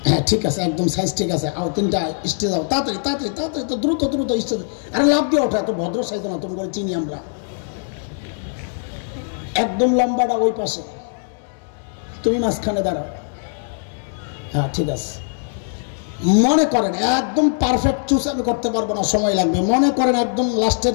হ্যাঁ ঠিক আছে, একদম সাইজ ঠিক আছে, আও 3টা স্টেজ যাও, তাড়াতাড়ি তাড়াতাড়ি তাড়াতাড়ি, তো দ্রুত দ্রুত স্টেজ। আরে লাভ দিয়ে ওঠো, এত ভদ্র সাইজ না, তুমি করে চিনি আমরা। একদম লম্বাটা ওই পাশে, তুমি মাঝখানে দাঁড়াও। হ্যাঁ ঠিক আছে। মনে করেন একদম পারফেক্ট চুজ আমি করতে পারবো না, সময় লাগবে। মনে করেন একদম লাস্টের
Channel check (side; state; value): right; silent; digital silence